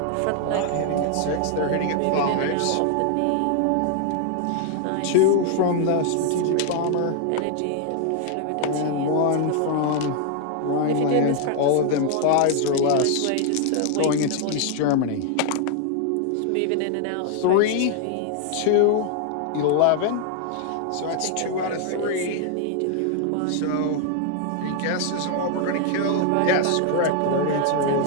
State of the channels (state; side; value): different; both; correlation 0.00